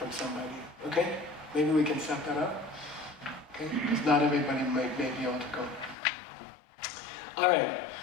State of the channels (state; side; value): drops out; right; at 6.0 s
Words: somebody. Okay? Maybe we can set that up. Okay? Because not everybody may be able to go. Alright.